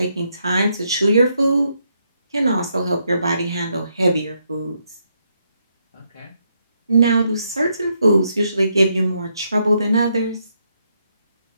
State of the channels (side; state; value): both; inverted; correlation -0.78